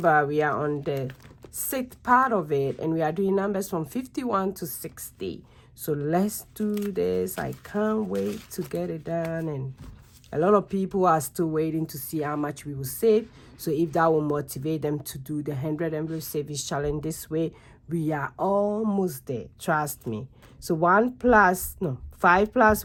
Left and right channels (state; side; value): identical; both; correlation 1.00